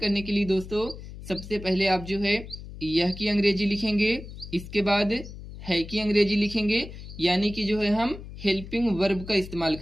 के लिए दोस्तों सबसे पहले आप जो है यह की अंग्रेजी लिखेंगे, इसके बाद है की अंग्रेजी लिखेंगे, यानी कि जो है हम हेल्पिंग वर्ब का इस्तेमाल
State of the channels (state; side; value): noise; left; hum, 13 dB below the sound